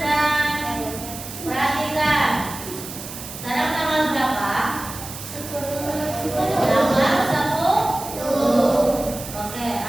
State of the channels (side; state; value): right; noise; hiss, 11 dB below the sound